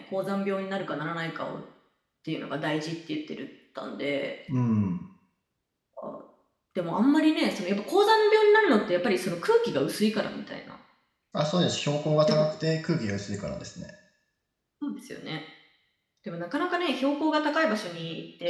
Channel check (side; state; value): both; identical; correlation 1.00